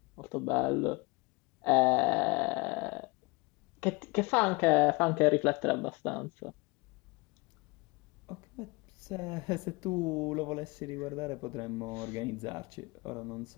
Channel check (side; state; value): right; quieter; 26.3 dB